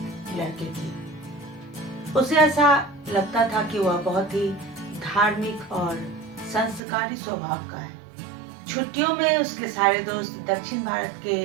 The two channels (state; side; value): drops out; left; at 6.8 s